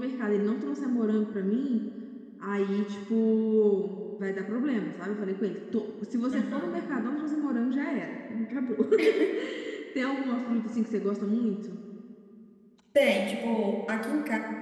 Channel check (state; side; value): identical; both; correlation 1.00